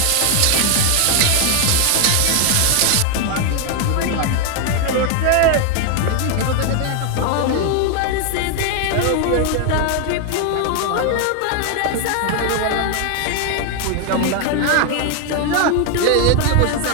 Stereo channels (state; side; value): different; both; correlation 0.01